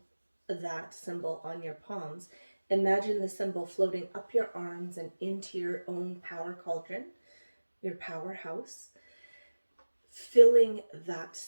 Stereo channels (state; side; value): inverted; both; correlation -1.00